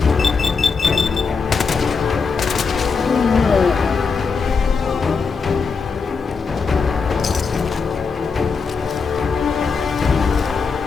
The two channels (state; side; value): quieter; right; 5.2 dB